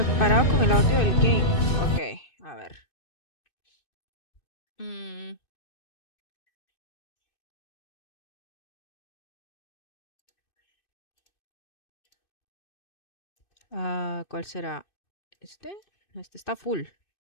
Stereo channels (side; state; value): right; late; 2.6 ms